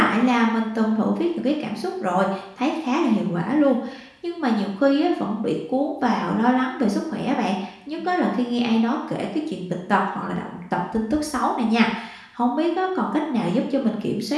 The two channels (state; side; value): identical; both; correlation 1.00